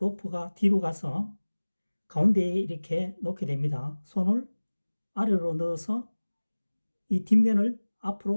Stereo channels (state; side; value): inverted; both; correlation -1.00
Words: 뒤로 가서 가운데에 이렇게 놓게 됩니다. 손을 아래로 넣어서 이 뒷면을